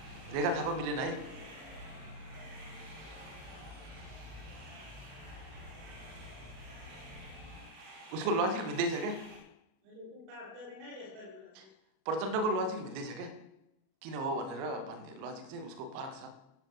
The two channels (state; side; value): late; left; 37 ms